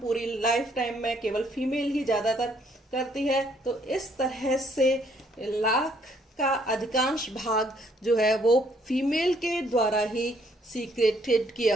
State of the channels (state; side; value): normal; both; correlation 0.67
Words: लाइफ टाइम में केवल फीमेल ही ज्यादातर करती है। तो इस तरह से लाख का अधिकांश भाग जो है वो फीमेल के द्वारा ही सीक्रेटेड